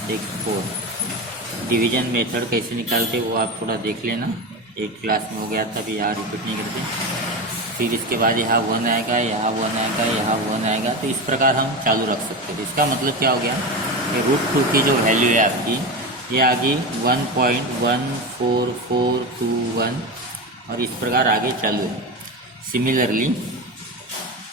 6 4। डिवीजन मेथड कैसे निकालते वो आप थोड़ा देख लेना, एक क्लास में हो गया था, अभी यहाँ रिपीट नहीं करते। फिर इसके बाद यहाँ 1 आएगा, यहाँ 1 आएगा, यहाँ 1 आएगा, तो इस प्रकार हम चालू रख सकते थे। इसका मतलब क्या हो गया कि √2 की जो वैल्यू है आपकी ये आ गई 1.14421, और इस प्रकार आगे चालू है। सिमिलरली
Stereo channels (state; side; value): normal; both; correlation 0.21